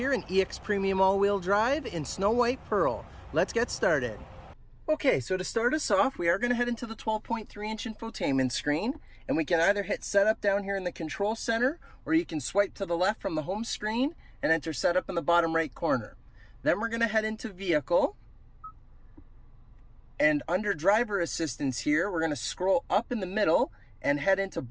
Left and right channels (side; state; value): both; identical; correlation 1.00